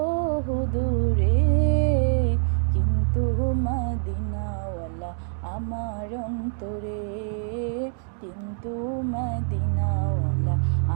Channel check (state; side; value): silent; left; digital silence